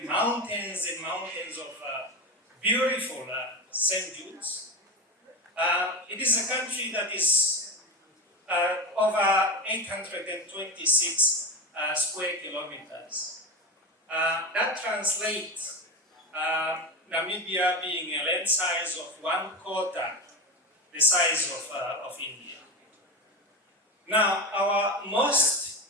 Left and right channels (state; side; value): normal; both; correlation 0.22